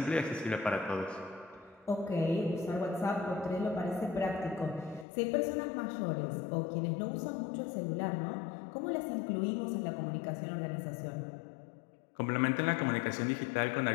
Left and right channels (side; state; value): right; drops out; at 5.1 s